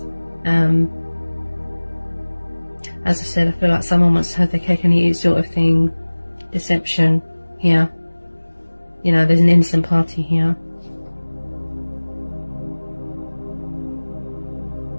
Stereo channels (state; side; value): inverted; both; correlation -1.00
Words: As I said, I feel like someone wants to have their cake and eat it sort of thing. Deception here. You know, there's an innocent party here.